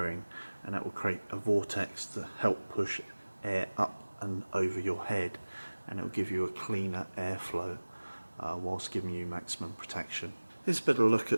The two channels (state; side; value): inverted; both; correlation -1.00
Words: and that will create a vortex to help push air up and over your head, and it will give you a cleaner airflow whilst giving you maximum protection. Here's a better look